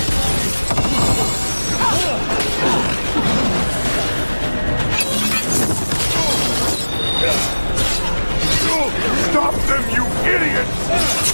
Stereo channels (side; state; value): both; inverted; correlation -1.00